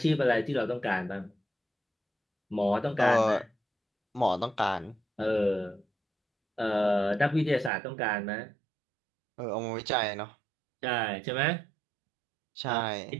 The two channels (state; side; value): drops out; left; at 7.7 s